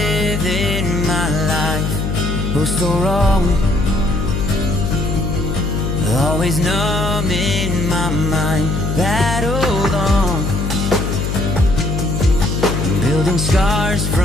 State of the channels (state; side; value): noise; left; hum, 1 dB below the sound